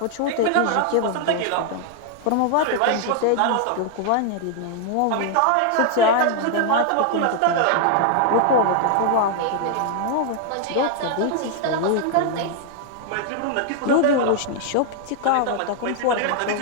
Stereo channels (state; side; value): different; both; correlation 0.00